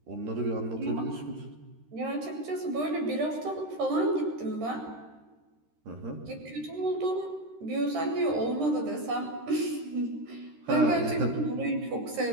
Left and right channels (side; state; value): left; late; 13 ms